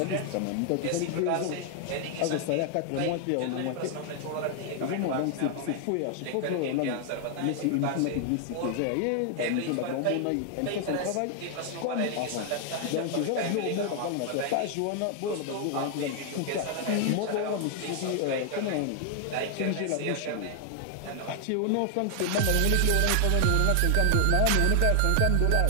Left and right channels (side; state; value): both; different; correlation 0.00